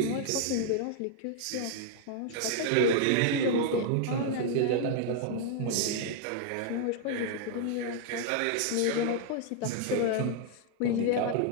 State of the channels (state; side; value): different; both; correlation 0.00